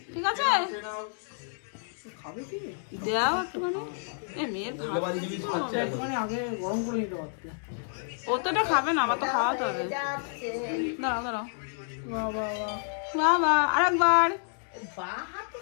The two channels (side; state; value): right; silent; digital silence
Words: ঠিক আছে? খাবে কি? দাও একটুখানি। এ মেয়ের ভাত কি করবো আমি? একটুখানি আগে গরম করে নিতে পারতে। ও তো এটা খাবে না, আমার তো খাওয়াতে হবে। দাঁড়াও দাঁড়াও। বাহ বাহ বাহ। বাবা আরেকবার। বাঁ হাতে